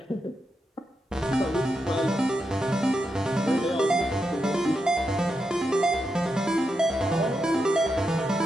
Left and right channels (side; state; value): both; normal; correlation 0.86